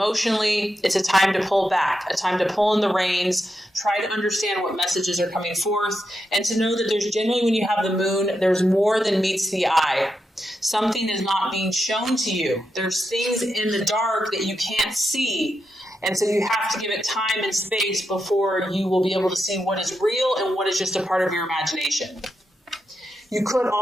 it's a time to pull back, a time to pull in the reins, try to understand what messages are coming forth, and to know that there's generally, when you have the moon, there's more than meets the eye. Something is not being shown to you. There's things in the dark that you can't see. And so you have to give it time and space before you will be able to see what is real and what is just a part of your imagination. You could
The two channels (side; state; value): both; normal; correlation 0.86